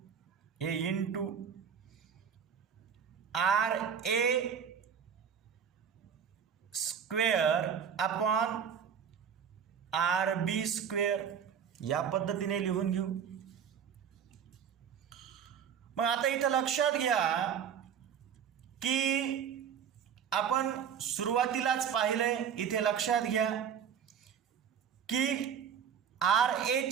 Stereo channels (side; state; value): left; quieter; 7.8 dB